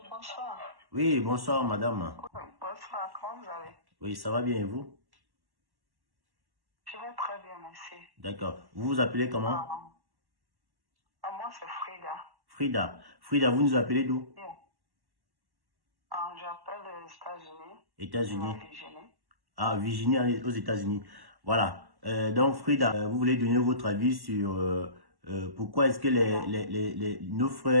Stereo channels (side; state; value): left; late; 1.1 ms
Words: bonsoir. Oui, bonsoir madame. Bonsoir, comment vous allez? Oui, ça va bien et vous? Je vais très bien, merci. D'accord. Vous vous appelez comment? Moi, c'est Frida. Frida. Frida, vous nous appelez d'où? Bien. J'appelle des États-Unis. États-Unis. Virginie. Ah, Virginie aux États-Unis. Voilà. Donc Frida, vous voulez donner votre avis sur pourquoi est-ce que nos